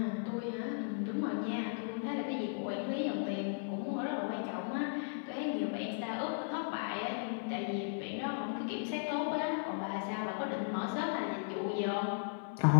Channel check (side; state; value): right; silent; digital silence